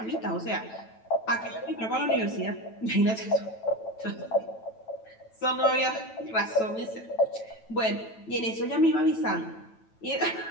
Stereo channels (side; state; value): right; late; 9.1 ms